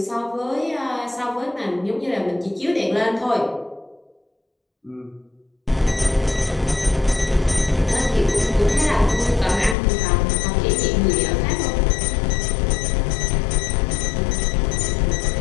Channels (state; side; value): drops out; right; at 9.8 s